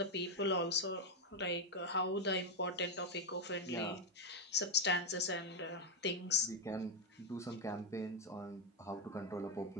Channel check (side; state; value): both; normal; correlation 0.04